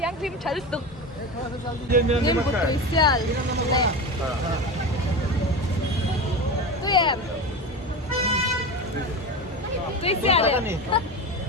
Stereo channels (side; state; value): both; normal; correlation 0.24